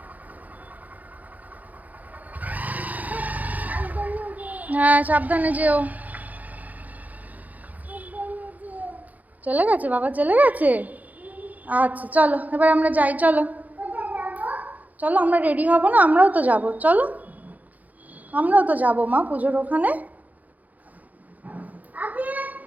হ্যাঁ সাবধানে যেও। চলে গেছে বাবা, চলে গেছে। আচ্ছা চলো এবার আমরা যাই, চলো চলো, আমরা রেডি হব না? আমরাও তো যাব, চলো আমরাও তো যাবো মা পুজোর ওখানে।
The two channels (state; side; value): late; left; 0.079 ms